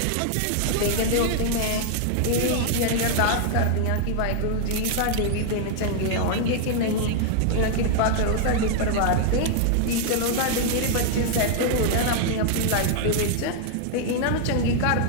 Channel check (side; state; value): both; different; correlation 0.00